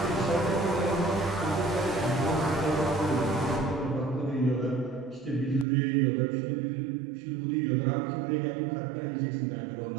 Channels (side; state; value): left; drops out; at 5.7 s